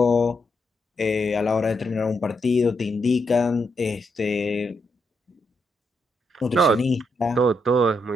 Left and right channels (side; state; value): both; normal; correlation 0.80